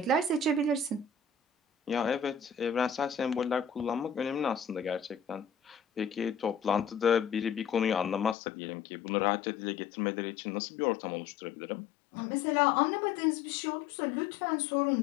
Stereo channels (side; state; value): right; drops out; at 8.3 s